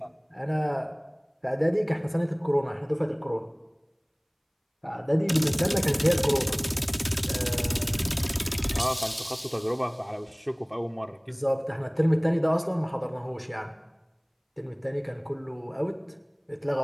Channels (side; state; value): both; identical; correlation 1.00